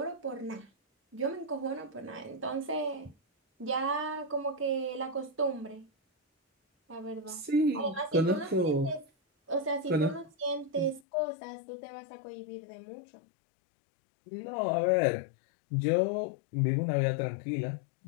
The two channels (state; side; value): drops out; right; at 11.0 s